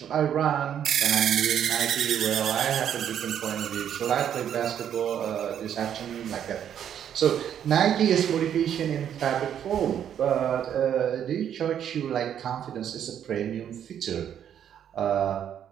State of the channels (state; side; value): quieter; left; 9.4 dB